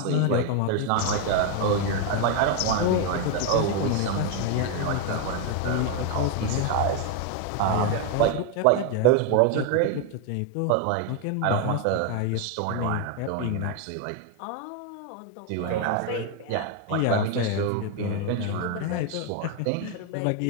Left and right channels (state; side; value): different; both; correlation 0.01